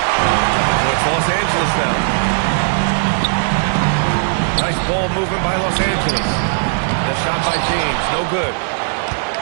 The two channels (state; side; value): silent; left; digital silence